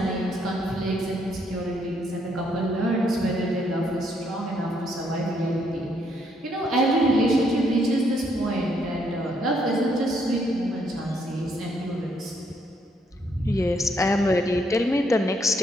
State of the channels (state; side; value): normal; both; correlation 0.72